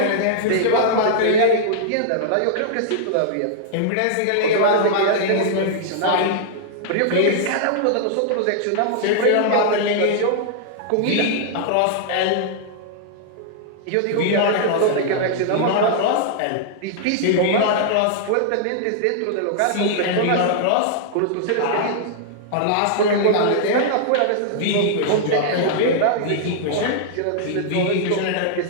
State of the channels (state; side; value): different; both; correlation -0.01